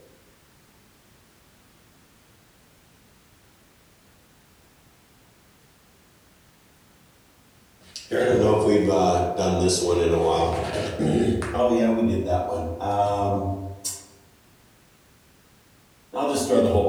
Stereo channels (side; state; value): both; identical; correlation 1.00